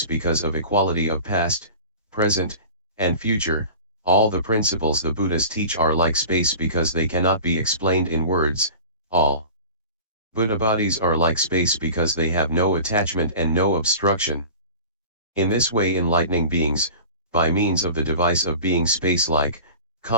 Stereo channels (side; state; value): both; inverted; correlation -0.38